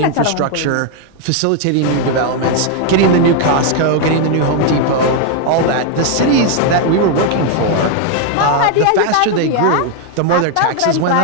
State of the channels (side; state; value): both; different; correlation 0.00